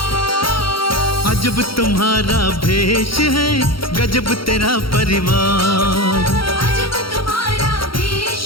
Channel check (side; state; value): right; late; 0.74 ms